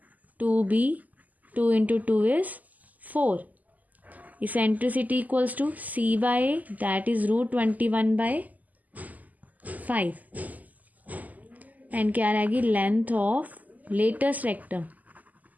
2b 2 into 2 is 4। Eccentricity equals to c/a that is √21/5। And क्या रहेगी, length of latus rectum,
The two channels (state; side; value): late; left; 0.079 ms